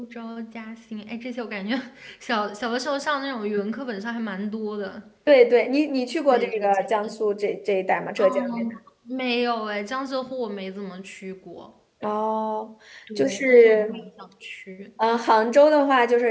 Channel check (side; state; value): both; identical; correlation 1.00